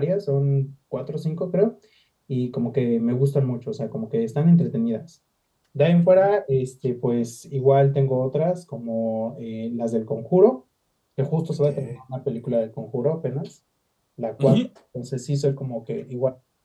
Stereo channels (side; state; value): both; identical; correlation 1.00